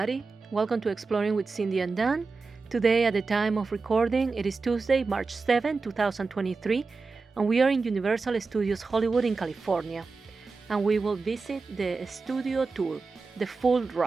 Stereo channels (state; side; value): quieter; left; 4.2 dB